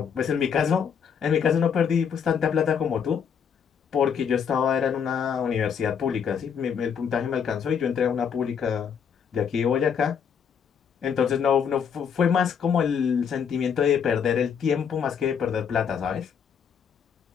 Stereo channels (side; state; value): right; quieter; 7.3 dB